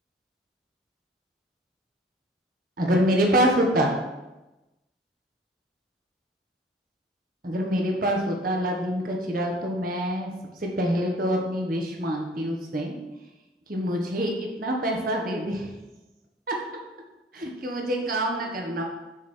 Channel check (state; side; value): normal; both; correlation 0.48